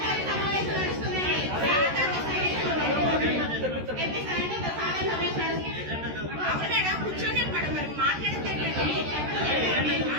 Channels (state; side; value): late; left; 13 ms